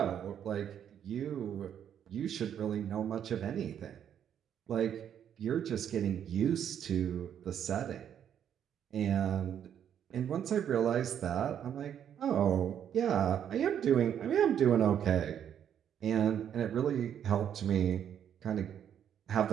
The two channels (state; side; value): quieter; left; 9.2 dB